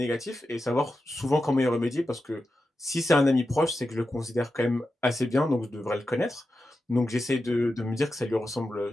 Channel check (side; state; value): both; normal; correlation 0.90